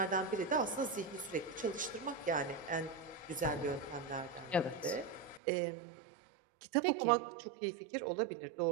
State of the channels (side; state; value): left; drops out; at 5.4 s